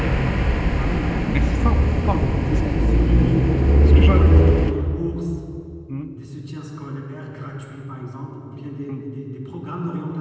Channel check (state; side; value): identical; both; correlation 1.00